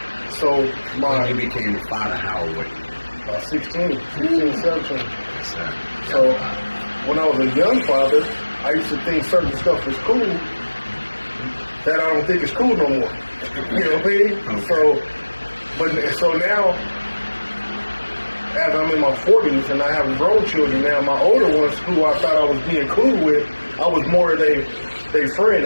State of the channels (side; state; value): both; inverted; correlation -1.00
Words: so when you became a father, how old were you? 16, 17. Yes, sir. So when I was a young father, I used to think certain stuff was cool that I don't think is cool no more. You know what I mean? Okay. So now as I'm in my 40s and I have grown children now, my older ones who I thought I was being cool with, I was more they friend,